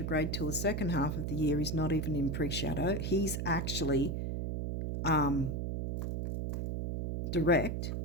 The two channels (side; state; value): right; noise; hum, 1 dB below the sound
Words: till the second half of the year. He's not even in pre-shadow. He's actually direct.